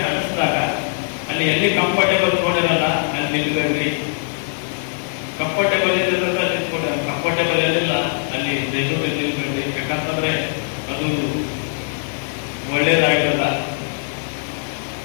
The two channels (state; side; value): silent; right; digital silence